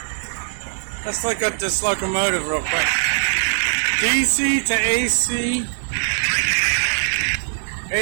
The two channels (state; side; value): silent; left; 63 dB below the other